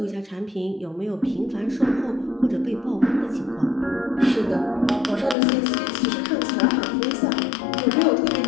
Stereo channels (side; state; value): right; drops out; at 5.4 s